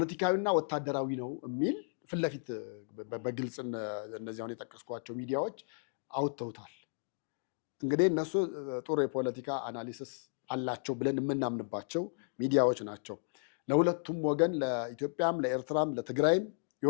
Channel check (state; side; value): silent; right; digital silence